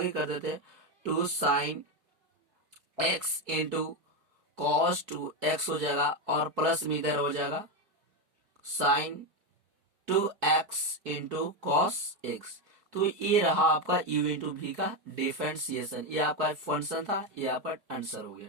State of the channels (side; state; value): left; late; 4.6 ms